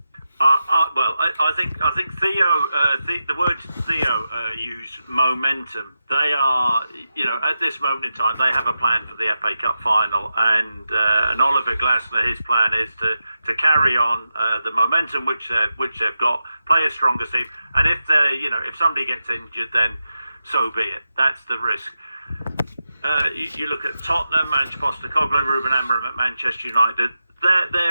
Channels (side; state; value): both; inverted; correlation -0.90